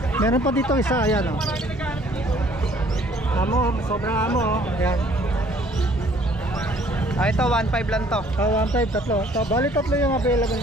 Meron pa dito isa, ayan, oh. Amo, sobrang amo, oh. Ayan. Ito, 1.5 lang to. 1.5, tatlo. Bali tatlo yung available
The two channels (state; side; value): normal; both; correlation 0.59